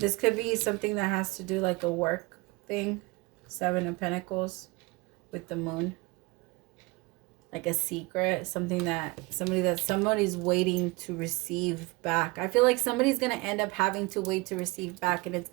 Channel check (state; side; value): quieter; left; 24.4 dB